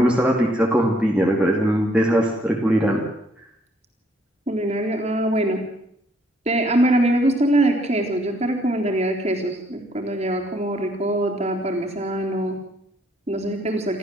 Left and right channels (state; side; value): normal; both; correlation 0.67